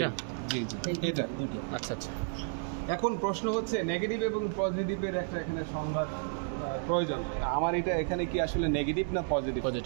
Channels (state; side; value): silent; left; 57 dB below the other